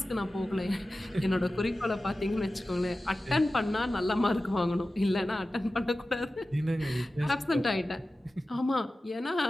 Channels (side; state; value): both; normal; correlation 0.95